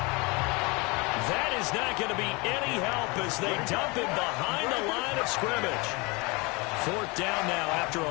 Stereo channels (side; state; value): right; quieter; 26.9 dB